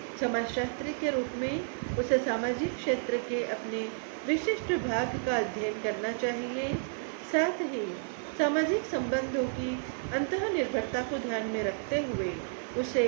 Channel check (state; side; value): silent; left; digital silence